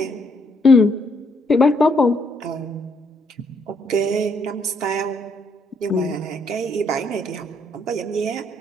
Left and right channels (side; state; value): both; normal; correlation 0.72